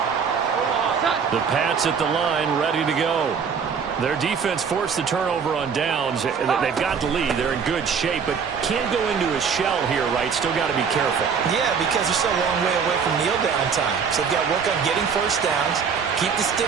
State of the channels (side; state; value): left; quieter; 6.3 dB